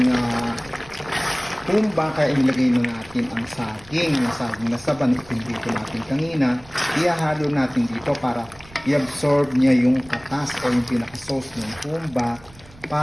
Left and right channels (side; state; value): right; noise; rumble, 23 dB below the sound